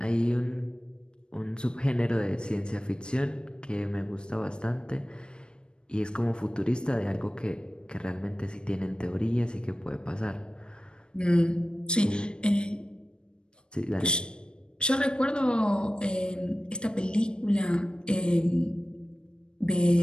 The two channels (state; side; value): late; right; 0.052 ms